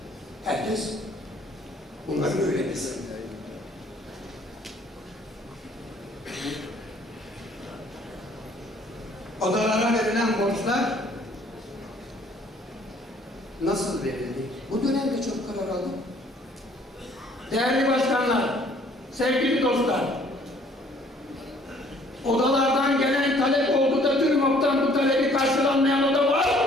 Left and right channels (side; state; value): both; normal; correlation 0.59